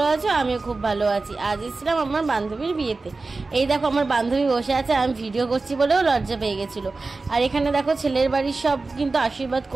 আছো। আমিও খুব ভালো আছি। আজ এসেছিলাম আমার বান্ধবীর বিয়েতে। এই দেখো আমার বান্ধবী বসে আছে, আমি ভিডিও করছি বলেও লজ্জা পেয়ে গেছিলো। আর এখানে দেখো ছেলের বাড়ির সব কিন্তু আশীর্বাদ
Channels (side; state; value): left; quieter; 3.7 dB